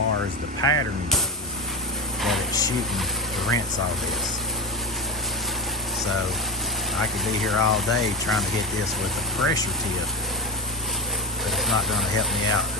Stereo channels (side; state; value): both; normal; correlation 0.16